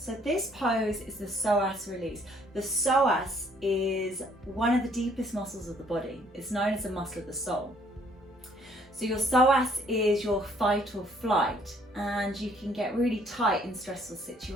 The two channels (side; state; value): both; normal; correlation 0.63